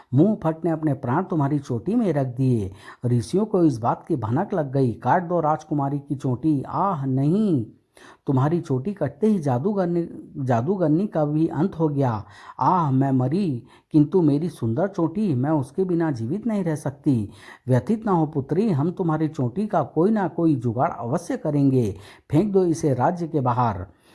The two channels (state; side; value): identical; both; correlation 1.00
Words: मुंह फट ने अपने प्राण तुम्हारी चोटी में रख दिए। ऋषियों को इस बात की भनक लग गई। काट दो राजकुमारी की चोटी। आह नहीं, तुम्हारी चोटी कटते ही जादूगरनी का भी अंत हो गया। आह, मैं मरी, किंतु मेरी सुंदर चोटी, मैं उसके बिना जीवित नहीं रह सकती। व्यथित ना हो पुत्री, हम तुम्हारी चोटी का कोई ना कोई जुगाड़ अवश्य करेंगे। फेंक दो इसे राज्य के बाहर।